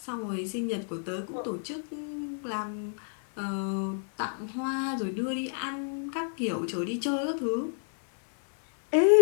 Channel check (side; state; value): right; silent; 57 dB below the other